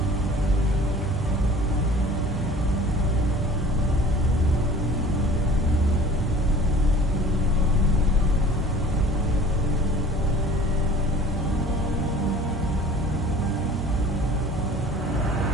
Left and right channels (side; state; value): both; normal; correlation 0.46